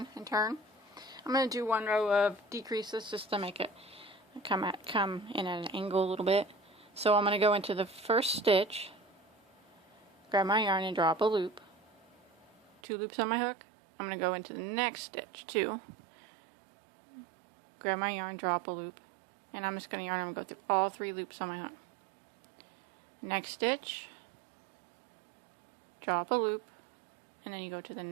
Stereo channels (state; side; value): drops out; left; at 12.8 s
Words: and turn. I'm going to do 1 row of decreases just to make it come in at an angle a little bit. So I'm going to go into the first stitch, grab my yarn and draw up a loop, 2 loops on my hook. I'm going to go into the next stitch, 2, grab my yarn, draw up a loop, and I'm just going to yarn and go through all 3 loops on my hook. Next stitch, draw up a loop, and then you go to the